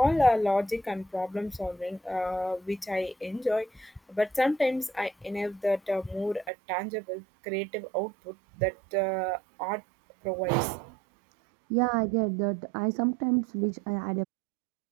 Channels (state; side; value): drops out; left; at 6.5 s